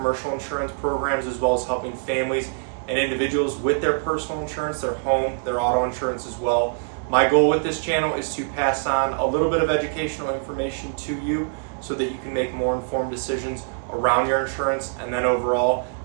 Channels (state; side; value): silent; left; 63 dB below the other